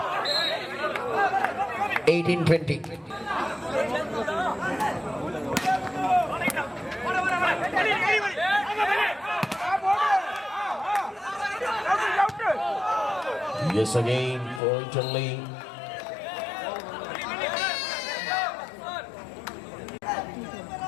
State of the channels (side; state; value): right; drops out; at 14.6 s